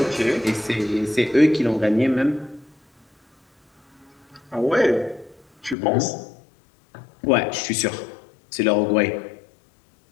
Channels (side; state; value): right; drops out; at 5.8 s